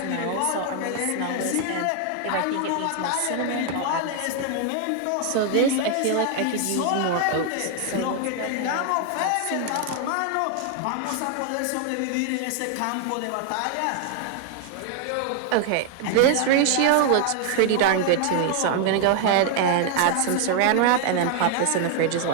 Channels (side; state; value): both; different; correlation 0.00